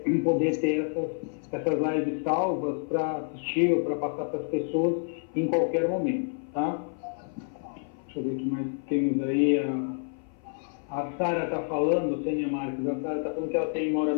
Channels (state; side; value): silent; right; 56 dB below the other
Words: poder ter essas lives salvas para assistir ou para passar para as pessoas em qualquer momento, tá? Deixa eu ver o que mais temos aí. A Sara está falando, Sênia Marques, a Sara está falando que ela mora